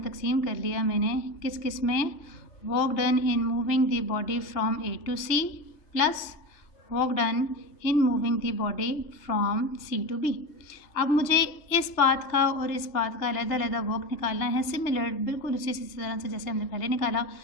तकसीम कर लिया मैंने। किस किस में, work done in moving the body from A to C plus work done in moving the body from C to B। अब मुझे इस पाथ का और इस पाथ का अलग-अलग वर्क निकालना है, सिमिलर बिल्कुल उसी तरह से जैसे हमने पहले निकाला,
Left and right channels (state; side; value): late; right; 2.9 ms